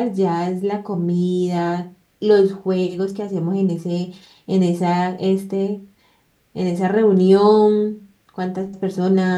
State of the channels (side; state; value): both; identical; correlation 1.00